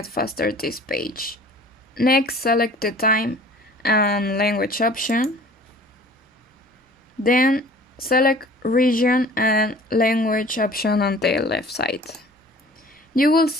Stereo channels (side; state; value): both; normal; correlation 0.48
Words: faster this page. Next, select the time and language option. Then select region and language option on the left side. You will